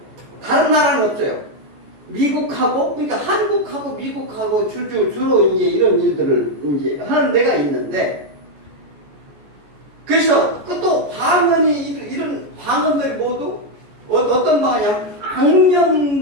다른 나라는 없어요. 그러니까 한국하고 미국하고 주로 이제 이런 일들을 이제 하는 데가 있는데, 그래서 또 이런 방언들이 모두 어떤 방언이냐면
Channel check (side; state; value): left; late; 14 ms